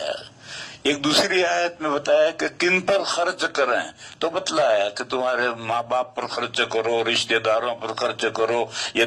ایک دوسری آیت میں بتایا کہ کن پر خرچ کریں، تو بتلایا کہ تمہارے ماں باپ پر خرچ کرو، رشتہ داروں پر خرچ کرو،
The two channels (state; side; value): identical; both; correlation 1.00